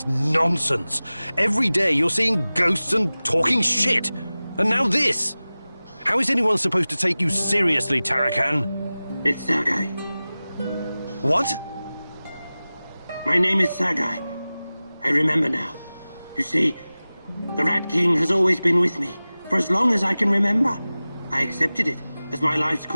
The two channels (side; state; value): both; inverted; correlation -0.97